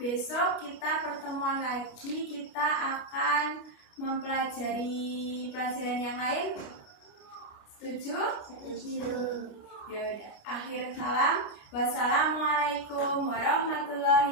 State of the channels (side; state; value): right; late; 28 ms